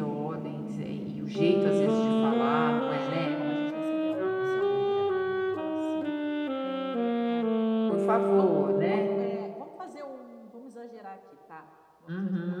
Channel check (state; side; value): identical; both; correlation 1.00